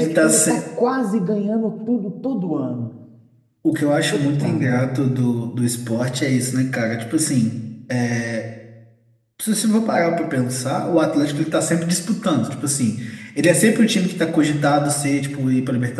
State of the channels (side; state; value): both; identical; correlation 1.00